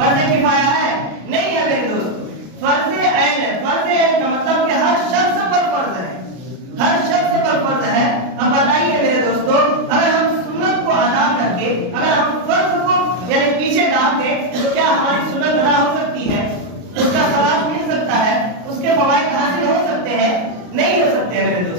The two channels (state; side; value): late; left; 33 ms